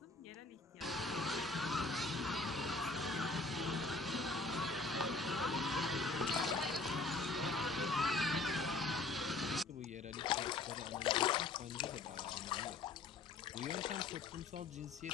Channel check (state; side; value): quieter; right; 3.6 dB